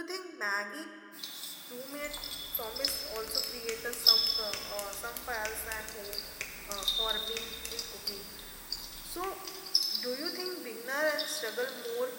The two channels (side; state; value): both; identical; correlation 1.00